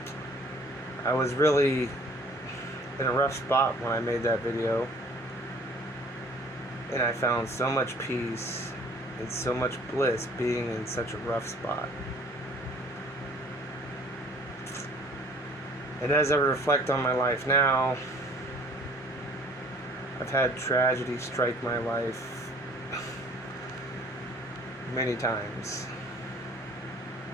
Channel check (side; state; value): both; normal; correlation 0.53